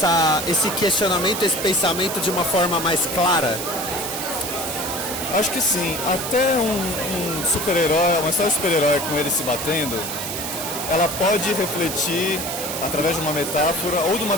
esse questionamento, esse pensamento de uma forma mais clara. Acho que sim. Até um super-herói, uma história de super-herói com ele se batendo, ela pode refletir, através de uma metáfora ou de uma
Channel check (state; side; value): noise; right; hiss, 6 dB below the sound